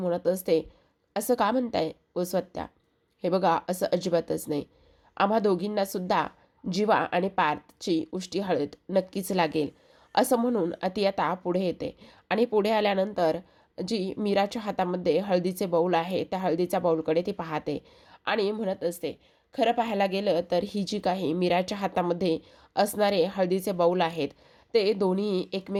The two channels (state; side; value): identical; both; correlation 1.00